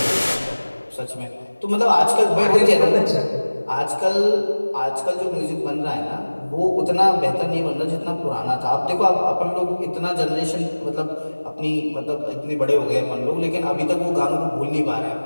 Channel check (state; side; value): inverted; both; correlation -1.00